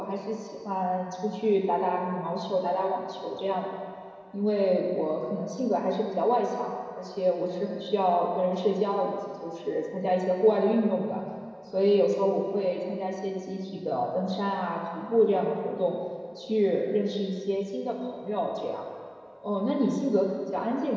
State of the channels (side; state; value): both; identical; correlation 1.00